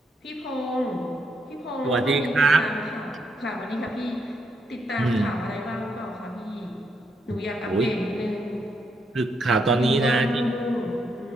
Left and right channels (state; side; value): normal; both; correlation 0.78